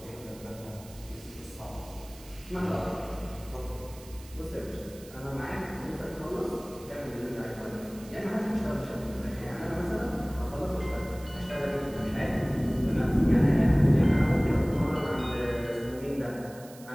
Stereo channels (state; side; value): noise; right; hiss, 20 dB below the sound